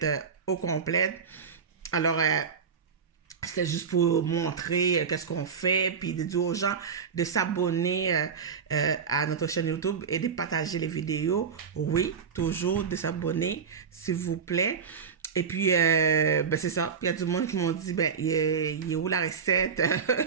au complet. Alors, c'était juste pour montrer qu'est-ce qu'on fait, puis de dire aux gens de s'abonner à notre chaîne YouTube et de partager les vidéos. Oui, toujours de s'abonner, s'il vous plaît. Et puis, c'est ça. Il y a du monde qui m'ont dit, il est où la recette?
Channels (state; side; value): quieter; left; 6.3 dB